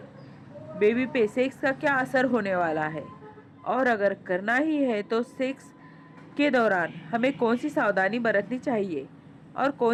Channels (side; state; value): both; identical; correlation 1.00